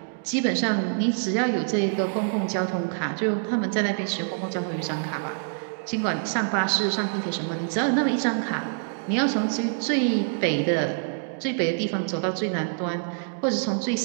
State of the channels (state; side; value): silent; left; digital silence